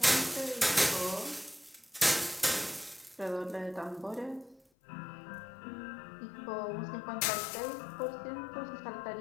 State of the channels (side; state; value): right; drops out; at 4.6 s